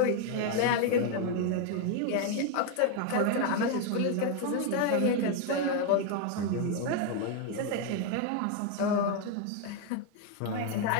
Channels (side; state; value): both; different; correlation 0.01